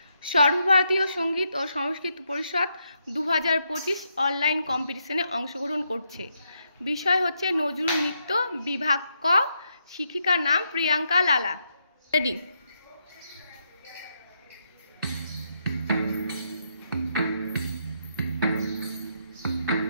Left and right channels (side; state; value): both; inverted; correlation -0.79